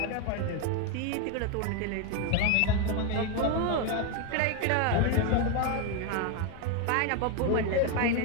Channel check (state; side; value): different; both; correlation 0.02